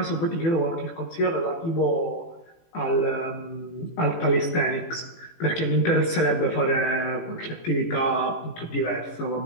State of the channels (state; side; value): late; right; 18 ms